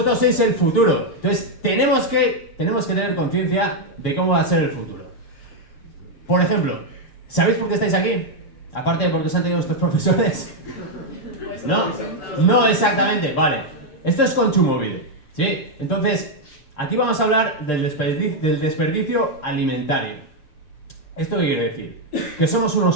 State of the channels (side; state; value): right; late; 6.7 ms